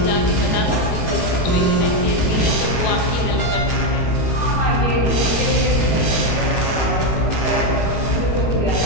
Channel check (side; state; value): right; late; 17 ms